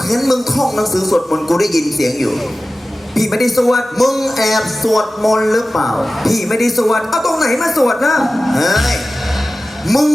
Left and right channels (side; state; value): both; normal; correlation 0.95